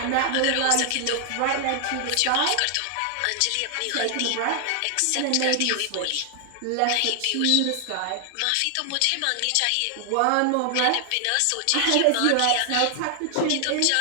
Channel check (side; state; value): both; different; correlation 0.00